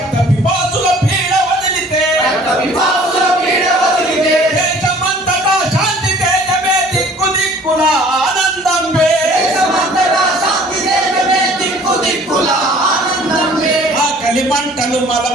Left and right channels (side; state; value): both; normal; correlation 0.52